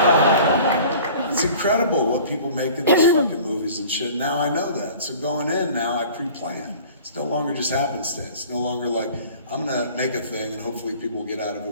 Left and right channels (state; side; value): inverted; both; correlation -0.46